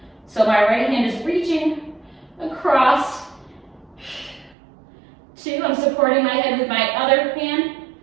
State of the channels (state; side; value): drops out; left; at 4.5 s